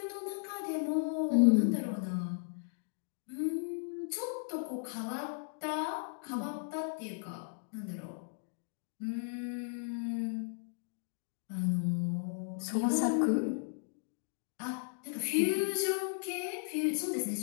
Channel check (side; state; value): right; silent; digital silence